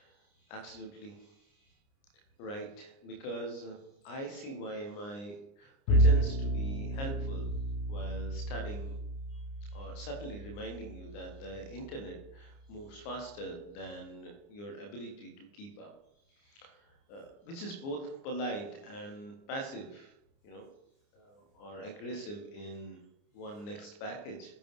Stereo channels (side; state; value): right; late; 29 ms